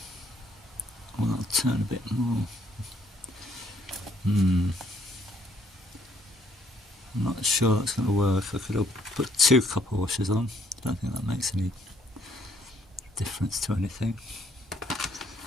Well, that'll turn a bit more. I'm not sure that's going to work. I could have put 2 copper washers on. I don't think that makes any difference to anything.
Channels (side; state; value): both; normal; correlation 0.66